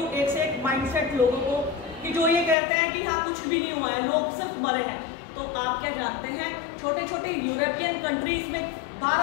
एक से एक माइंडसेट लोगों को कि जो ये कहते हैं कि हाँ कुछ भी नहीं हुआ है, लोग सिर्फ मरे हैं। तो आप क्या जानते हैं, छोटे छोटे यूरोपियन कंट्रीज में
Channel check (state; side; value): drops out; right; at 2.6 s